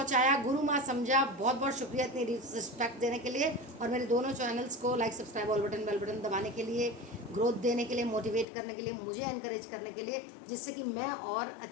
गुरु माँ समझा, बहुत बहुत शुक्रिया इतनी रिस्पेक्ट देने के लिए, और मेरे दोनों चैनल्स को like subscribe all button bell button दबाने के लिए, ग्रोथ देने के लिए, मोटिवेट करने के लिए, मुझे एनकरेज करने के लिए, जिससे कि मैं और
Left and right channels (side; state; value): right; drops out; at 8.5 s